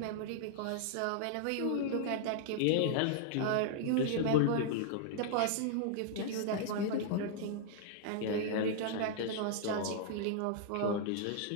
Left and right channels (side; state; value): both; different; correlation -0.01